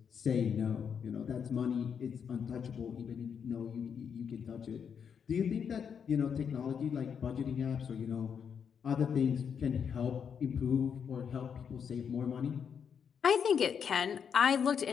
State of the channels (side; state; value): right; quieter; 7.2 dB